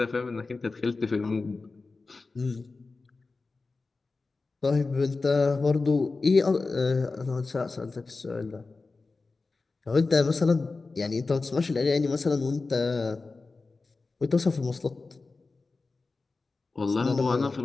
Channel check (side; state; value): right; quieter; 3.8 dB